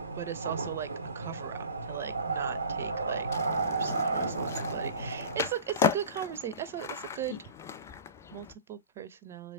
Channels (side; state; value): both; inverted; correlation -0.39